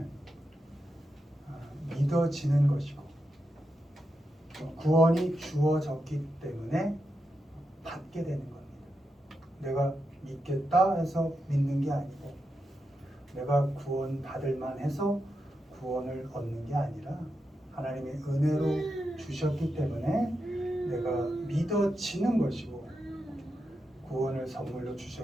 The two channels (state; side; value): normal; both; correlation 0.87